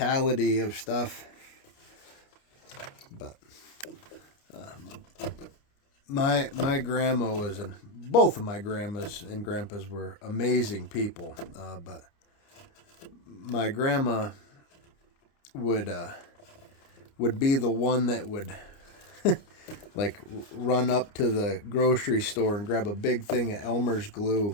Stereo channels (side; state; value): right; late; 29 ms